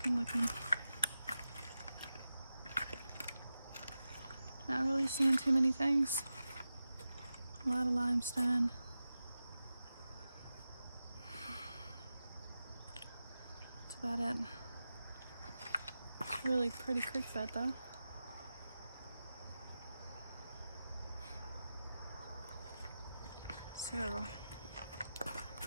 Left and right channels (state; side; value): inverted; both; correlation -0.92